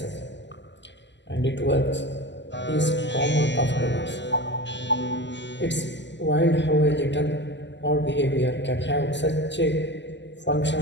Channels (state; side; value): late; right; 0.52 ms